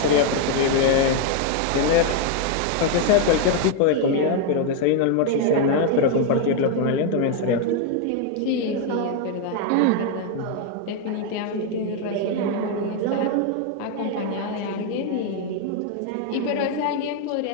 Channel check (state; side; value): different; both; correlation 0.01